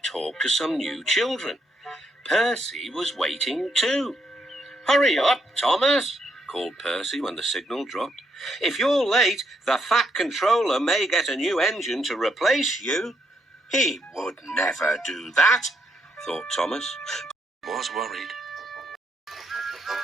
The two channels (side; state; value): both; normal; correlation 0.77